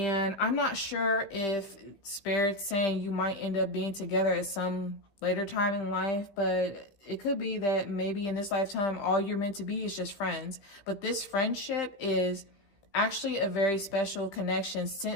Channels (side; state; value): right; late; 15 ms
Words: I'm not sure if Spirit's saying you might end up being together at some later time in life, but it could be that maybe in this lifetime, all you're meant to be is just friends. But this friendship is actually a very special connection